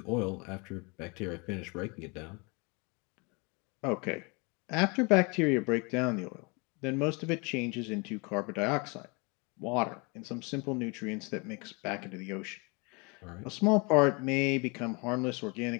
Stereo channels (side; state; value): right; quieter; 30.2 dB